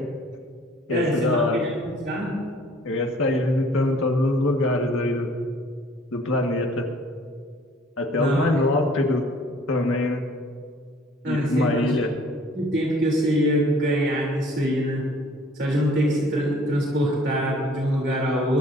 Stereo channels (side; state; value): both; normal; correlation 0.55